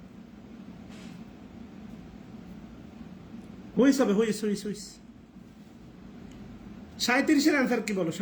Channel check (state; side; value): identical; both; correlation 1.00